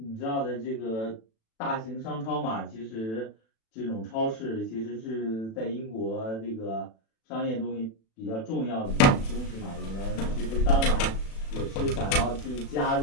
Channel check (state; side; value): late; right; 36 ms